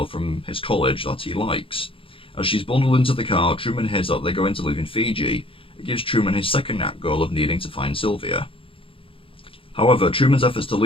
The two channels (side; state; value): right; late; 0.26 ms